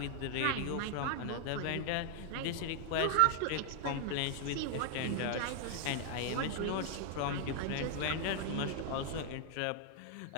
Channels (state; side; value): different; both; correlation 0.00